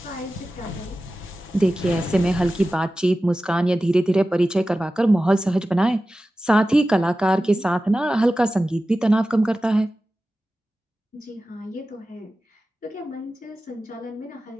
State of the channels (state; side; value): normal; both; correlation 0.94